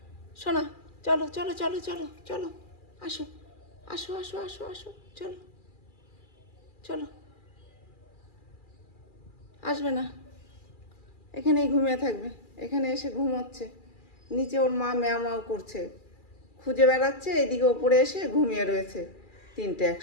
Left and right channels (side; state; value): right; late; 2.4 ms